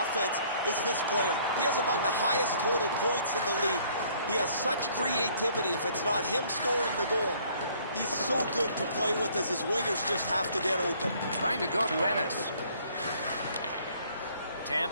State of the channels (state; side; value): inverted; both; correlation -0.60